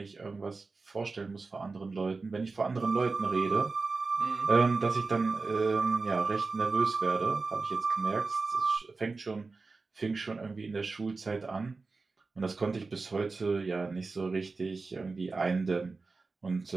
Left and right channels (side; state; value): left; quieter; 4.0 dB